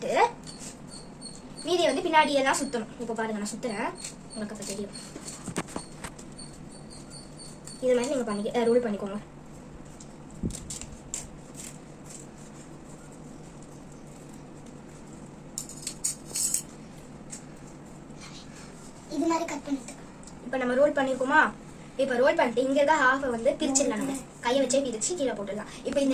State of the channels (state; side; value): identical; both; correlation 1.00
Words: மீதியை வந்து பின்னாடி எல்லாம் சுத்தணும். இப்போ பாருங்க நான் சுத்துறேன், உங்களுக்கு அப்ப தெரியும். இது மாதிரி நீங்க ரோல் பண்ணிக்கோங்க. இது மாதிரி கட் பண்ணிட்டு இப்போ நம்ம ரோல் பண்ணிருக்கோமா. இப்போ ரோல் பண்ணிட்டு இங்க இருக்க ஹாஃப் வந்து பிரிச்சிடலாம். நம்ம கையை வச்சே பிரிச்சு கீழே போட்டுடலாம். இப்போ இந்த